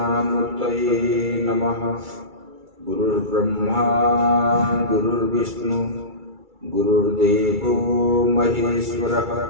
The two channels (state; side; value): late; left; 2.3 ms